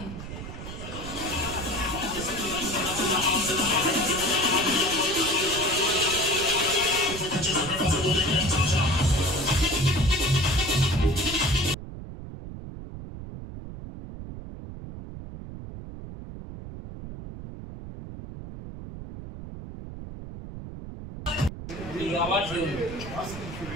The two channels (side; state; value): right; noise; rumble, 10 dB below the sound